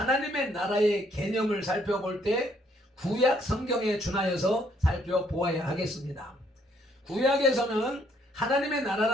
나라의 개념을 살펴볼 때 구약 성경에 준하여서 살펴보아야 하겠습니다. 구약에서는 하나님의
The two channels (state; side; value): normal; both; correlation 0.68